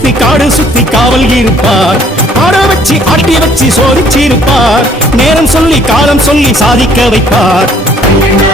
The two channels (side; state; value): both; normal; correlation 0.60